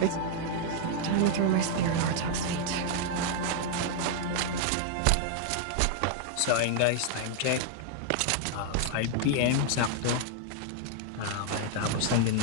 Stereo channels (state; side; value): different; both; correlation 0.00